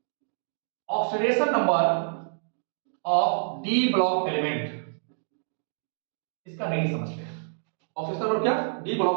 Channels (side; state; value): left; silent; digital silence